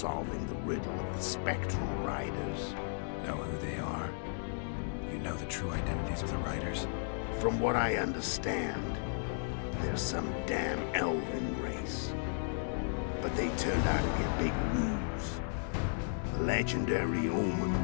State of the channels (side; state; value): right; silent; digital silence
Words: the riddle of the spectral riders. Know who they are? You know the true identities of the riders? From what I understand, they're some damn elven race. But they turned out to be a big ruse. The legendary Omen